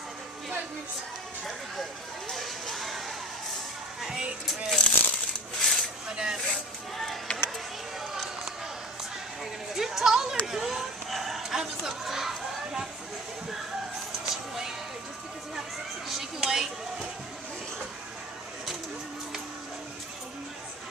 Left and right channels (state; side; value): normal; both; correlation 0.38